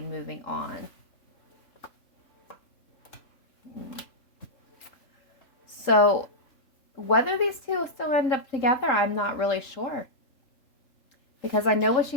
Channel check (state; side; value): late; right; 3.8 ms